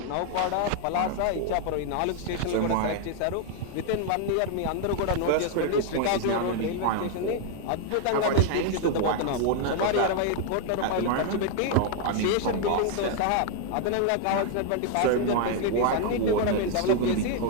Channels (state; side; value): different; both; correlation 0.00